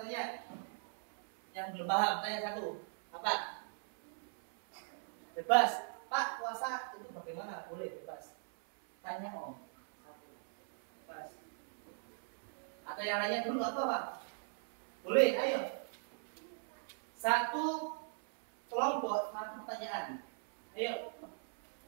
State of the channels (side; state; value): left; silent; 52 dB below the other